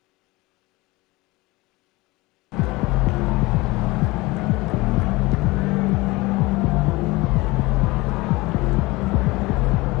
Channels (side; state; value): right; quieter; 21.9 dB